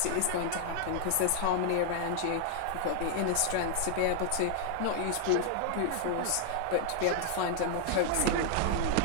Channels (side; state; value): both; different; correlation 0.00